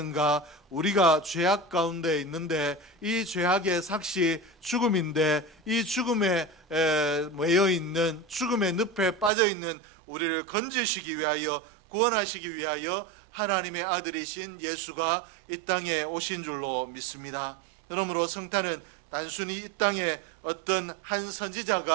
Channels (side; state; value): left; drops out; at 9.3 s